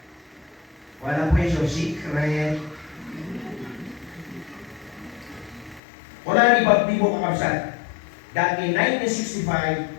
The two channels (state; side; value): drops out; right; at 5.8 s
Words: Wala po yung secret. Wala ni Baptibo kakabsat that in 1965,